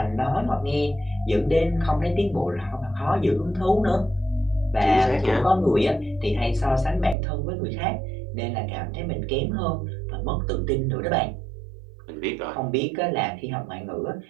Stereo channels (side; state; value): left; drops out; at 7.2 s